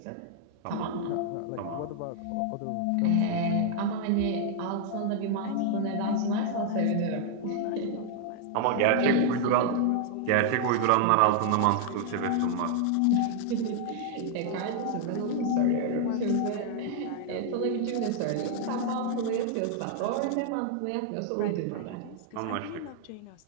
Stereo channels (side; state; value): both; different; correlation 0.00